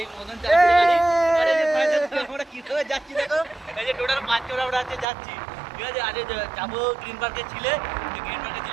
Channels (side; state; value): left; drops out; at 5.1 s